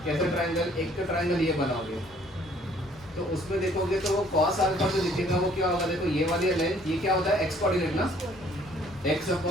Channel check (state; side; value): normal; both; correlation 0.60